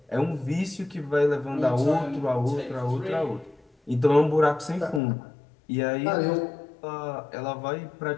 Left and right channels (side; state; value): right; drops out; at 5.0 s